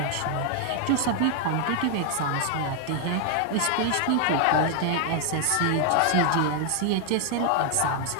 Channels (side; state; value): both; different; correlation 0.00